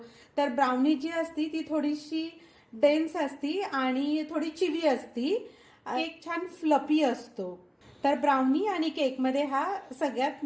तर ब्राउनी जी असती ती थोडीशी डेन्स असती आणि थोडी चिवी असती. केक छान फ्लपी असतो. तर ब्राउनी आणि केकमध्ये हा सगळ्यात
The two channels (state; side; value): identical; both; correlation 1.00